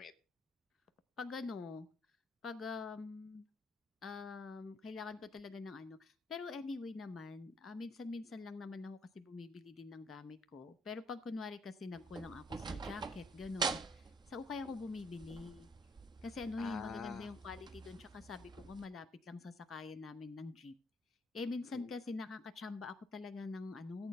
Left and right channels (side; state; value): both; normal; correlation 0.68